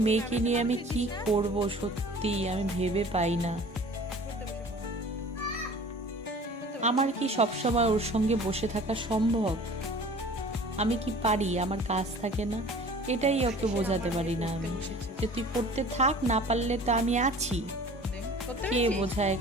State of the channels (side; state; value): both; normal; correlation 0.45